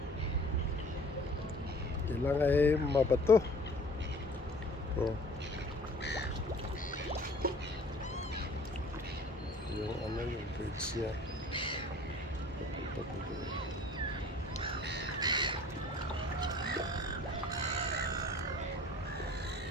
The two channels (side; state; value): both; normal; correlation 0.49